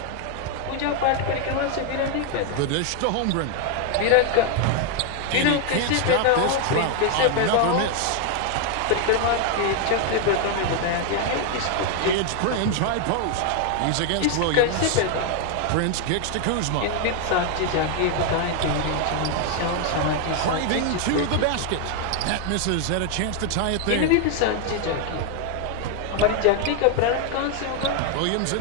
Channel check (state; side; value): different; both; correlation 0.01